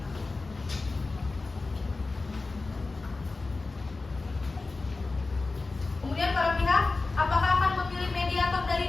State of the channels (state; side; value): quieter; right; 3.6 dB